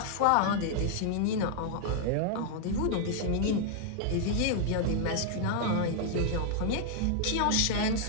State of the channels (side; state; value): both; different; correlation -0.01